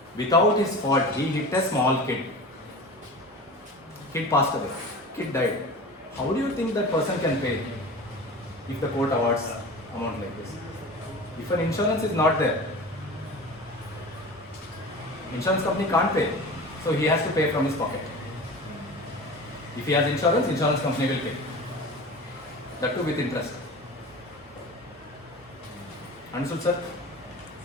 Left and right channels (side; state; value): both; normal; correlation 0.35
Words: Without his fault, he hit a small kid. Kid passed away. Kid died. How do you think that person can pay if the court awards amount like this? If an insurance is not there, insurance company can't pay, so he has to pay from his pocket. If he has insurance, insurance company will pay. That too with interest. Understood, sir?